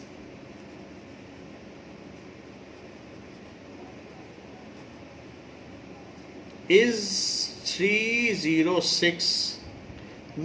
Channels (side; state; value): both; identical; correlation 1.00